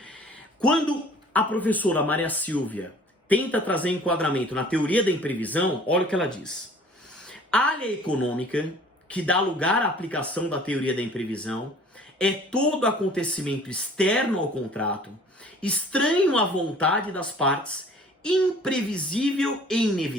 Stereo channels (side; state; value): both; normal; correlation 0.50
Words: Quando a professora Maria Silvia tenta trazer enquadramento na teoria da imprevisão, olha o que ela diz. A área econômica, que dá lugar à aplicação da teoria da imprevisão, é todo acontecimento externo ao contrato, estranho à vontade das partes, imprevisível e